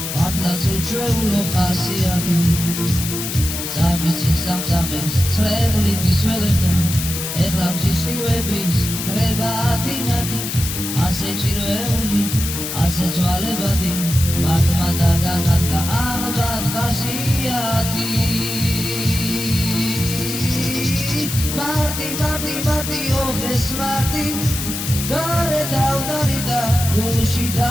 მართლაც უჩვეულო ხასიათი წამიწინ სამწამებს წვერული გისველებდა ეხლა მსისხლივების ხრება დინადი ასე ჭიროეული ასე ცვალებადი მარტმა დაგანათლა ალბათ ხასიათი მარტი ოხეს მარტი გარე დავდარიდა გულში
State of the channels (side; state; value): left; noise; hiss, 5 dB below the sound